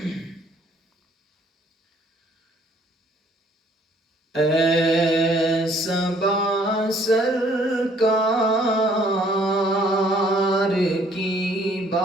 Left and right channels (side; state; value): both; normal; correlation 0.61